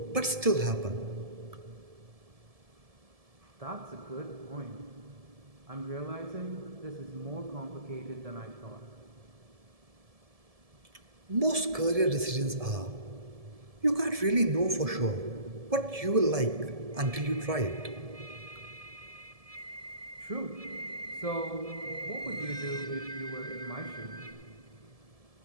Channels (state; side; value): late; left; 1.7 ms